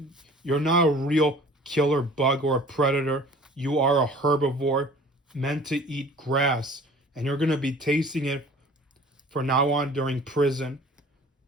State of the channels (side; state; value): both; normal; correlation 0.48